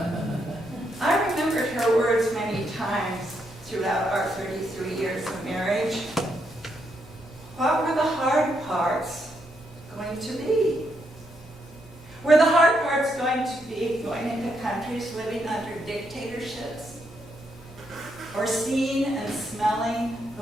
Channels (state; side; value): normal; both; correlation 0.78